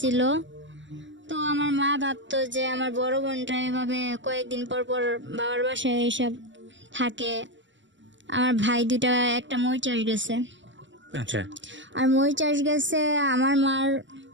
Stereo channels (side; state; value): left; late; 0.54 ms